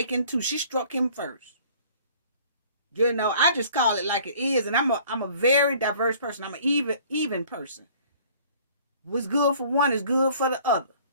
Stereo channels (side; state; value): both; inverted; correlation -0.53